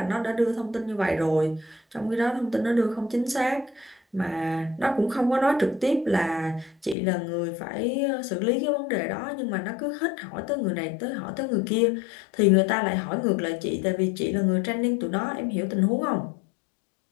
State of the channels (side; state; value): right; drops out; at 7.0 s